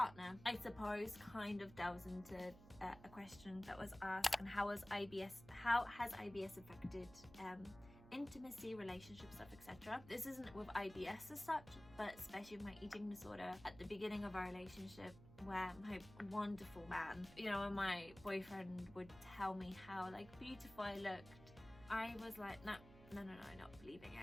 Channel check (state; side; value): noise; right; hum, 18 dB below the sound